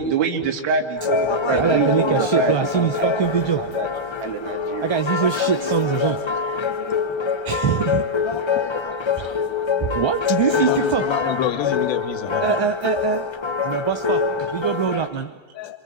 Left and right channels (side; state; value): right; late; 1.3 ms